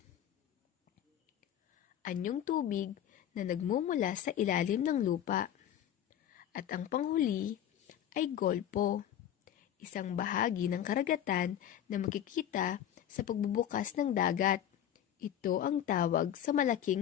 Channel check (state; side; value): quieter; right; 10.6 dB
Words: Anyong tubig na nagmumula sa ilalim ng lupa. At ang panghuli ay golpo, isang bahagi ng karagatan na makikita sa pagbubukas ng dagat. Ito ang tawag sa